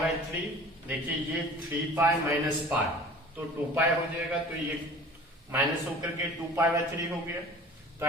3। देखिए ये 3 पाई माइनस पाई, तो 2 पाई हो जाएगा, तो ये माइनस होकर के 2 पाई बाई 3 हो गया। तो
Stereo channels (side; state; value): both; normal; correlation 0.43